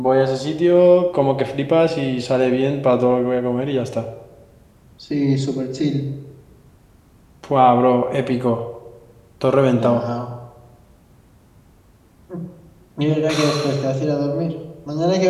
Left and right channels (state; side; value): identical; both; correlation 1.00